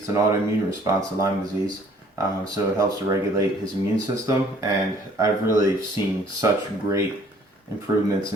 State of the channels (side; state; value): both; normal; correlation 0.57